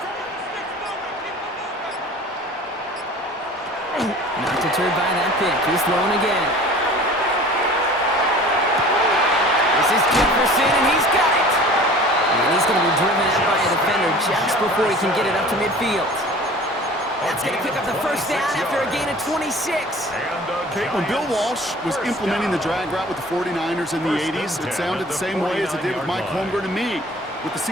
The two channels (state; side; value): normal; both; correlation 0.44